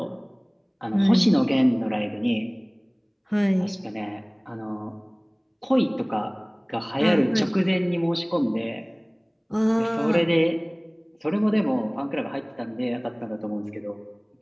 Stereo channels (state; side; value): identical; both; correlation 1.00